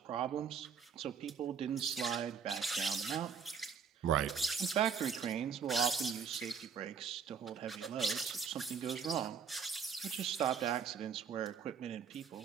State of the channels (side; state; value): left; quieter; 6.6 dB